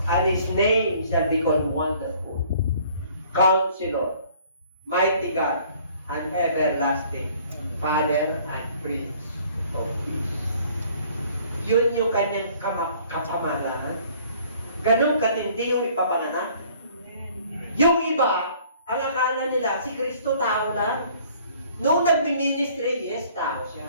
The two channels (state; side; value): inverted; both; correlation -0.56